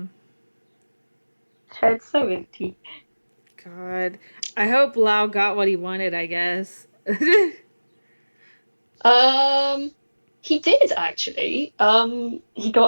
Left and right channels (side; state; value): both; inverted; correlation -1.00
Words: Head's so empty. God. I hope Lau got what he wanted, I guess. Um, he did actually. He